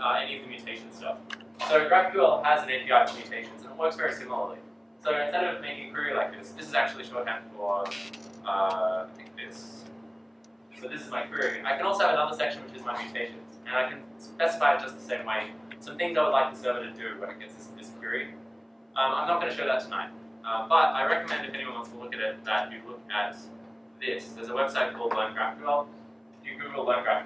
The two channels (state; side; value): identical; both; correlation 1.00